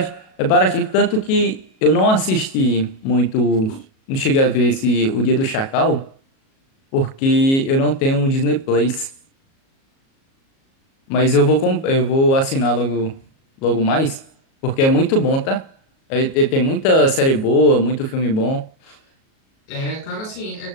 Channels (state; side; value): late; right; 37 ms